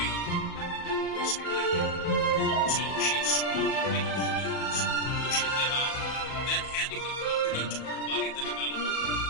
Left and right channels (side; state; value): right; late; 37 ms